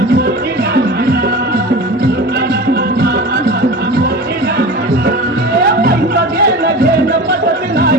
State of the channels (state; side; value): normal; both; correlation 0.33